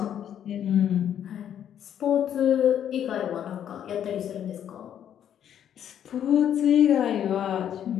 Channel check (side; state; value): right; quieter; 9.8 dB